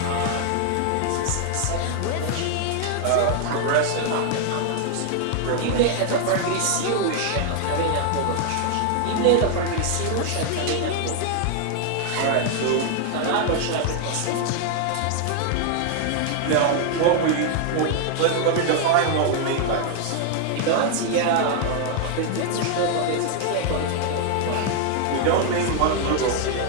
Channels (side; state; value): both; different; correlation 0.00